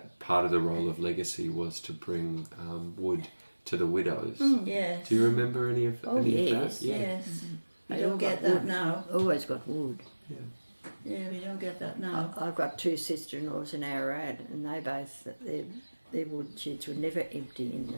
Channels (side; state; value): both; inverted; correlation -1.00